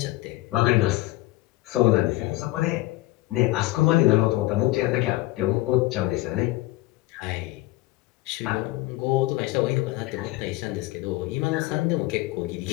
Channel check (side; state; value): right; quieter; 18.7 dB